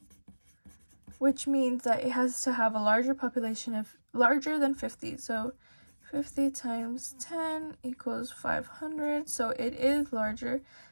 which means that it has to have a larger population of larger than 50. So 50 times 10 equals 500. So it is larger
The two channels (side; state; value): both; inverted; correlation -1.00